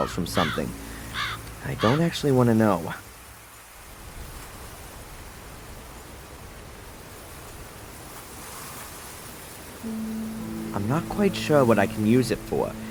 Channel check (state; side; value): identical; both; correlation 1.00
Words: from something. I don't actually want to know. I'm not quite sure what I can use it for,